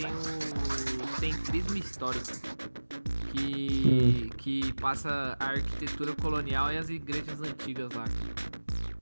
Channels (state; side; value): inverted; both; correlation -1.00